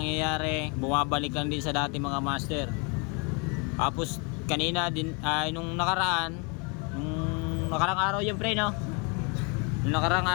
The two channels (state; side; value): quieter; right; 33.0 dB